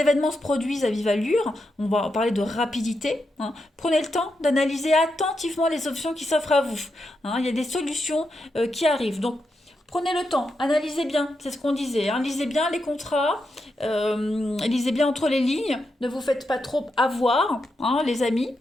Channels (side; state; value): both; normal; correlation 0.85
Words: se produisent à vive allure. On va parler de rapidité, hein. Prenez le temps d'analyser attentivement les options qui s'offrent à vous, hein. Il y a des solutions qui arrivent. Donc prenez le temps, analysez bien, c'est ce qu'on disait, hein. Lisez bien les contrats, lisez bien entre les lignes. Ne vous faites pas trop avoir, hein, les amis.